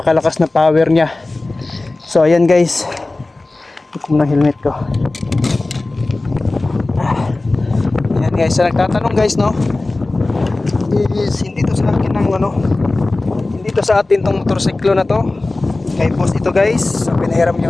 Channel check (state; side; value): quieter; right; 3.1 dB